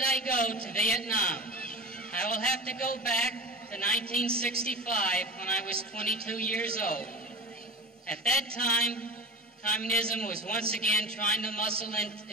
I go to Vietnam? I will have to go back to 1965 when I was 22 years old. At that time, communism was once again trying to muscle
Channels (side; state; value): both; normal; correlation 0.31